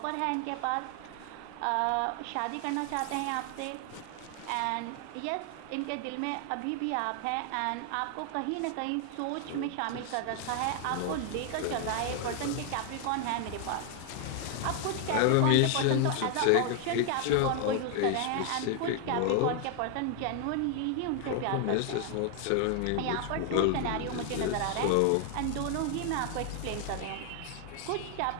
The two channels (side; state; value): both; different; correlation 0.00